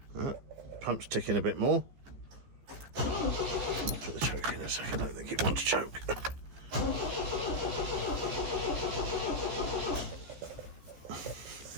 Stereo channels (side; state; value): left; late; 14 ms